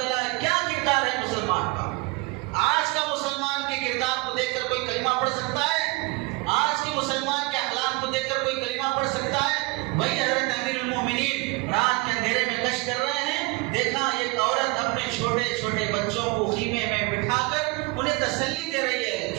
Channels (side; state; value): left; quieter; 25.2 dB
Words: ہے۔ کیا کردار ہے مسلمان کا؟ آج کا مسلمان کے کردار کو دیکھ کر کوئی کلمہ پڑھ سکتا ہے؟ آج کے مسلمان کے اخلاق کو دیکھ کر کوئی کلمہ پڑھ سکتا ہے؟ وہی حضرت امیر المومنین رات کے اندھیرے میں گشت کر رہے ہیں، دیکھا ایک عورت اپنے چھوٹے چھوٹے بچوں کو خیمے میں بٹھا کر انہیں تسلی دے رہی ہے،